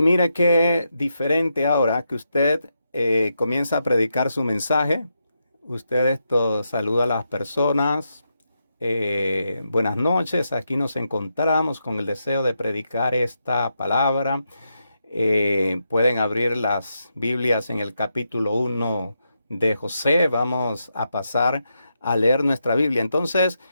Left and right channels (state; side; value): inverted; both; correlation -0.84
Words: mire qué diferente ahora que usted comienza a predicar su mensaje. Usted saluda a las personas. Buenas noches, aquí nos encontramos con el deseo de predicar esta palabra. Pueden abrir las Biblias en el capítulo 1 de José. Vamos a pasar a leer nuestra Biblia. Entonces,